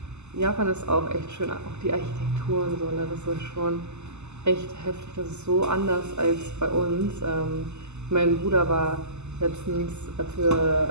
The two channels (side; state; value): left; late; 0.82 ms